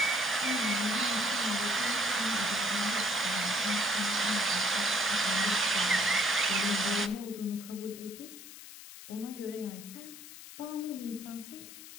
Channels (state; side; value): noise; left; hiss, 15 dB below the sound